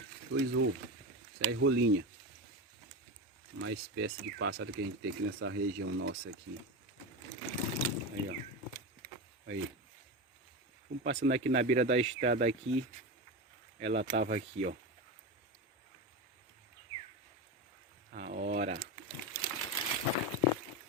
Dois ovos. Isso aí é rolinha. Uma espécie de pássaro que a gente tem aqui nessa região nossa aqui. Aí, ó. Aí. Vamos passando aqui na beira da estrada aqui. Ela tava aqui, ó. A hora.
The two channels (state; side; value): normal; both; correlation 0.20